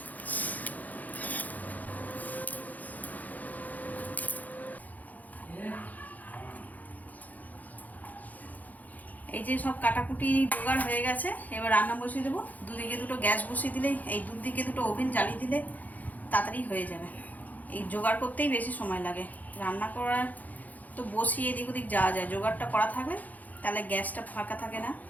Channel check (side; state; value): right; late; 0.080 ms